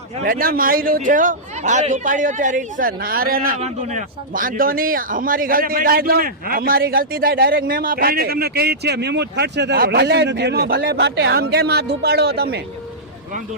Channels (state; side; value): normal; both; correlation -0.14